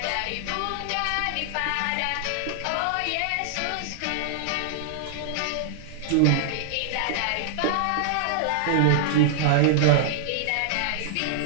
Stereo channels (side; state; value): both; different; correlation -0.01